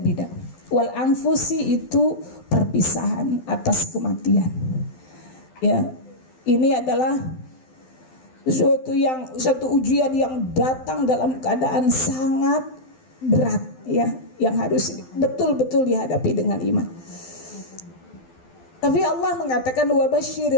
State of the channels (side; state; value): right; late; 12 ms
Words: Wal anfusi itu perpisahan atas kematian. Ya, ini adalah suatu ujian yang datang dalam keadaan sangat berat, ya, yang harus betul-betul dihadapi dengan iman. Tapi Allah mengatakan